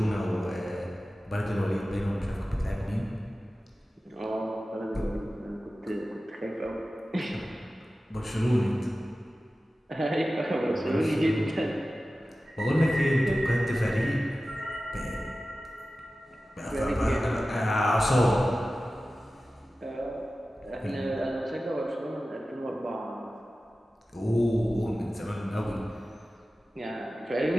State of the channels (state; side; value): normal; both; correlation 0.95